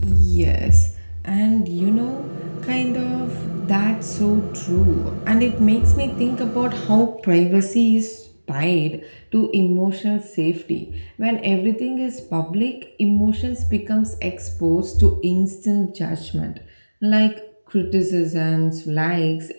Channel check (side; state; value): both; inverted; correlation -1.00